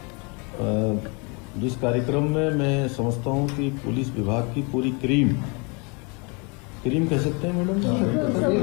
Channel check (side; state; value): right; quieter; 31.7 dB